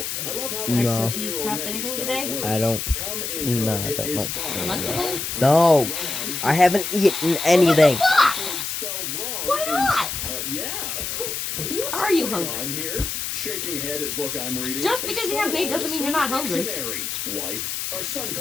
I love how No. my 7-year-old nephew spells words. I don't. Come in No, her, I it don't is like fine. Lunchable? No, I haven't eaten anything. Spelled wrong Why not? yeah. Are you Going hungry? on here? Shaking head at book I'm reading. Just because you haven't eaten doesn't mean you're not hungry. Dictionary. Wife, our son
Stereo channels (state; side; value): noise; left; hiss, 4 dB below the sound